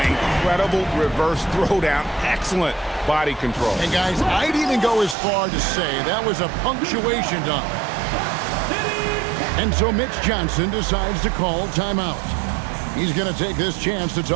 Incredible reverse throwdown. Excellent body control. And guys, I'd even go as far to say that was a punctuation dunk. And so Mitch Johnson decides to call timeout. He's going to take this chance to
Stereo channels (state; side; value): drops out; left; at 5.2 s